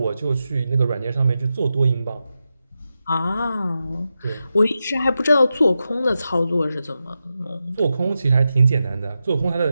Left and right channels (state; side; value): inverted; both; correlation -0.90